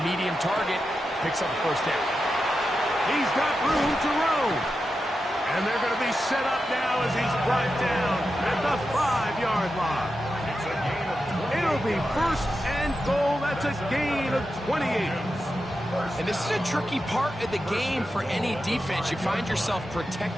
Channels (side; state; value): both; normal; correlation 0.89